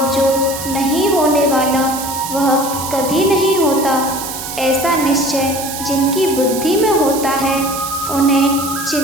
जो नहीं होने वाला वह कभी नहीं होता। ऐसा निश्चय जिनकी बुद्धि में होता है उन्हें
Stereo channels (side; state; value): right; noise; hiss, 8 dB below the sound